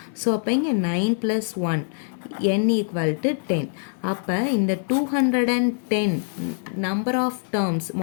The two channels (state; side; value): silent; right; digital silence